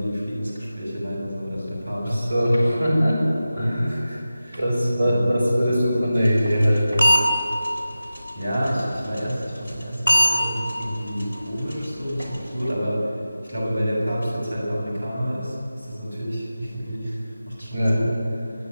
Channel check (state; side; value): inverted; both; correlation -0.94